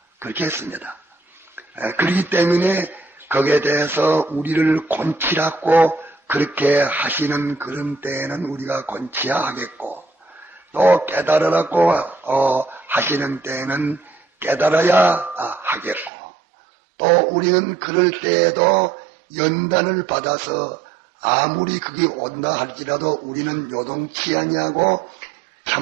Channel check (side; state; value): left; drops out; at 16.1 s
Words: 그렇게 했습니다. 그렇기 때문에 거기에 대해서 우리를 곤치라고 그렇게 하시는 그런 때에는 우리가 곤치야 하겠고 또 깨달으라고 하시는 때에는 깨달아야 하겠고 또 우리는 그럴 때에도 연단을 받아서 아무리 그게 온다 할지라도 우리는 요동치 아니하고